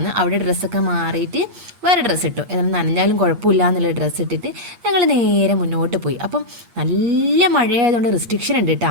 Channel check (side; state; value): left; late; 8.4 ms